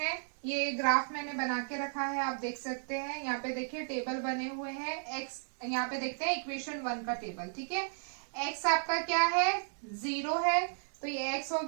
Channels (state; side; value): silent; left; digital silence